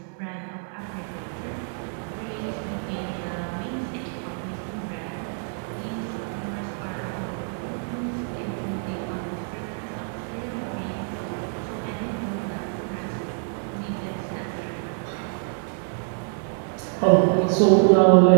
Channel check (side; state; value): left; silent; 61 dB below the other